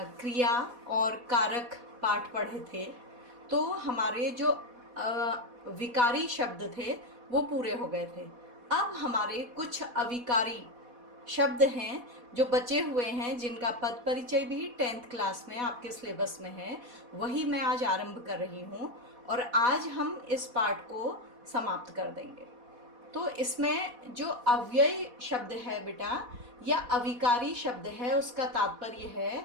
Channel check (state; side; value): late; left; 4.1 ms